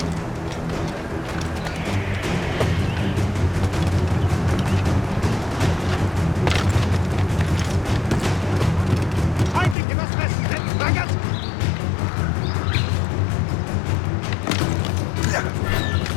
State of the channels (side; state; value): right; drops out; at 9.8 s